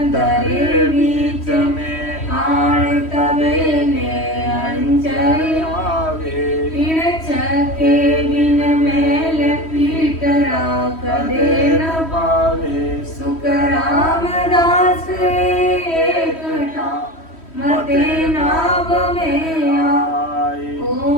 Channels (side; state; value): right; late; 3.1 ms